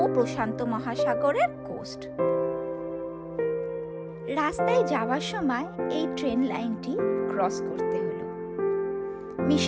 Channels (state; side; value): identical; both; correlation 1.00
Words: ও প্রশান্ত মহাসাগরের কোস্ট। রাস্তায় যাওয়ার সময় এই ট্রেন লাইনটি ক্রস করতে হলো।